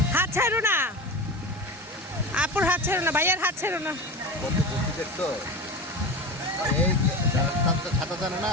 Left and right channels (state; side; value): normal; both; correlation 0.28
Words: হাত ছাড়ো না, আপুর হাত ছাড়ো না, ভাইয়ার হাত ছাড়ো না। ছাতা জানে